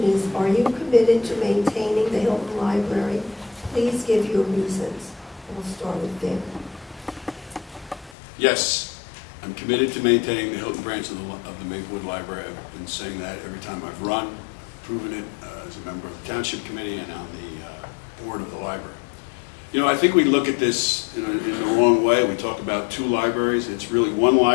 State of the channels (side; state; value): right; drops out; at 8.2 s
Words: is, are you committed to maintaining the Hilton Library? Please give your reasons. We'll start with Vic. Yes, I'm committed to maintaining the Hilton branch of the Maplewood Library. I've been saying that every time I've run, proven it as a member of the Township Committee and on the board of the library. You know, I think we look at this in the wrong way. We talk about 2 libraries. It's really 1